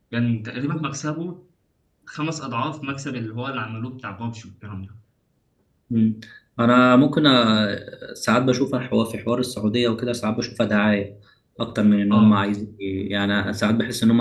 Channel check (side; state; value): both; identical; correlation 1.00